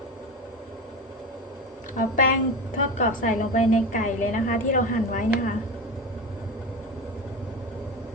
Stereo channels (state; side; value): normal; both; correlation 0.24